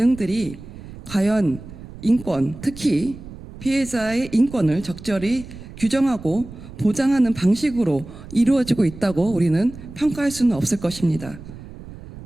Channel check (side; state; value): right; noise; rumble, 15 dB below the sound